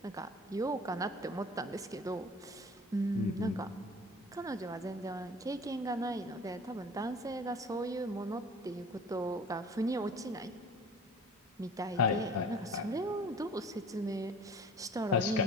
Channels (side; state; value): both; normal; correlation 0.45